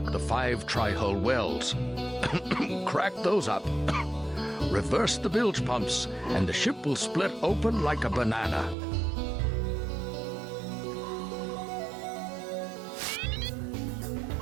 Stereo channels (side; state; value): left; drops out; at 8.8 s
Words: the 5 tri-hull wells. Crack those up. Reverse the bilge pumps, and the ship will split open like a banana.